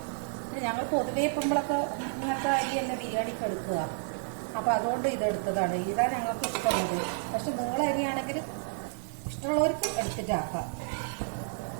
ഞങ്ങൾ പൊതുവേ ഇപ്പോഴൊക്കെ ഇങ്ങനത്തെ അരി തന്നെ ബിരിയാണിക്ക് എടുക്കുക. അപ്പോൾ അതുകൊണ്ട് ഇതെടുത്തതാണ്. ഇതാണ് ഞങ്ങൾക്ക് ഇഷ്ടമുള്ളത്. പക്ഷെ നീള അരിയാണെങ്കിൽ ഇഷ്ടമുള്ളവർക്ക് എടുത്തിട്ടാക്കാം.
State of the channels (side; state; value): left; silent; digital silence